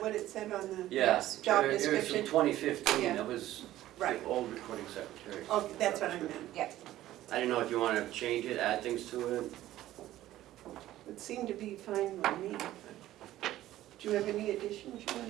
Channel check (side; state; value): left; quieter; 14.4 dB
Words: it said on the? Yes. Job It was description? from 2015, Yeah. that was Right. the old recording secretary. Okay, that's what I meant. yeah. I didn't know if you want to change it, add things to it. It seemed to be fine with me. But do you have any additions you